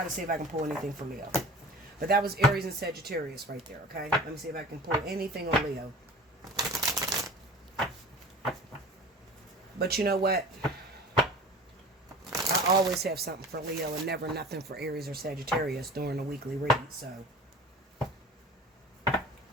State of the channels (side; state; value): both; normal; correlation 0.39